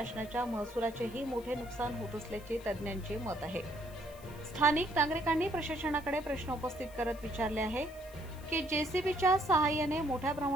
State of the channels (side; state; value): left; noise; hiss, 22 dB below the sound